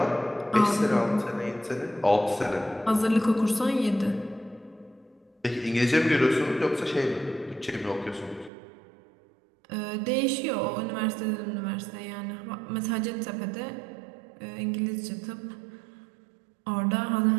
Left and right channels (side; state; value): left; drops out; at 8.5 s